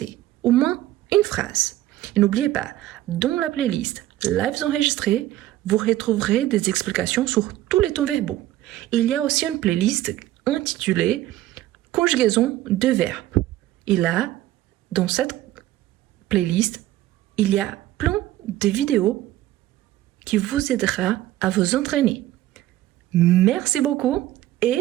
Au moins une phrase. Et n'oubliez pas, dans la playlist Lives enregistrés, vous retrouverez des explications sur tous les temps verbaux. Il y a aussi une playlist intitulée Conjugaison de verbes. Et là, dans cette playlist, il y a plein de vidéos qui vous aidera à vous entraîner. Merci beaucoup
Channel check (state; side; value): quieter; left; 14.6 dB